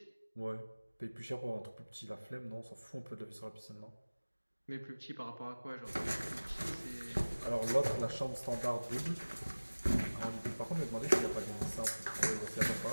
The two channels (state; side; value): inverted; both; correlation -1.00